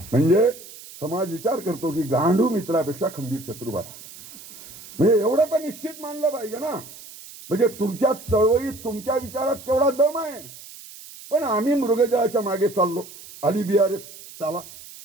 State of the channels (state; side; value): noise; right; hiss, 17 dB below the sound